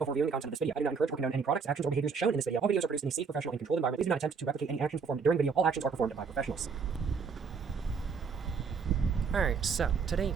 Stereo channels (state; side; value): quieter; left; 5.6 dB